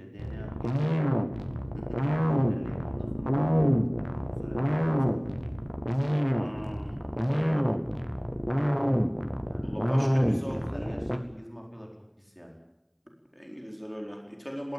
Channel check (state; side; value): identical; both; correlation 1.00